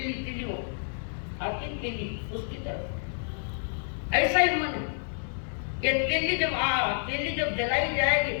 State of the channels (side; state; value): right; silent; digital silence